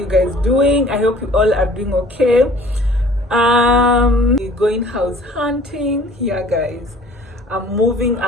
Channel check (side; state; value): both; normal; correlation 0.51